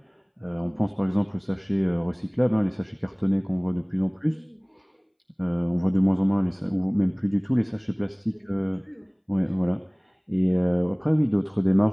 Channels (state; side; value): identical; both; correlation 1.00